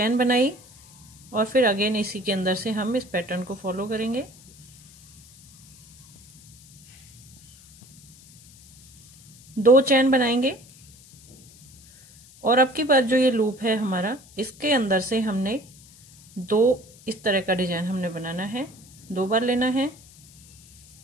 बनाई और फिर अगेन इसी के अंदर से हम इस पैटर्न को फॉलो करेंगे। दो चैन बनाएंगे और अब की बार जो ये लूप है हमारा, इसके अंदर से हमने 2 इस तरह का डिजाइन हमने बनाना है। 2 बार लेना है।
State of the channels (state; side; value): noise; left; hiss, 24 dB below the sound